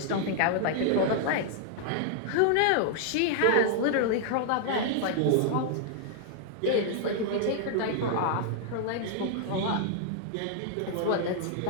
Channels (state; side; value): different; both; correlation -0.01